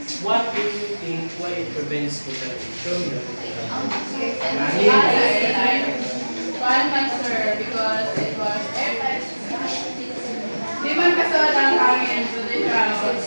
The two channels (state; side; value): inverted; both; correlation -1.00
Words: What do you think why it prevents contamination? One answer because it was airtight. Di man kasod ang hangin to the ground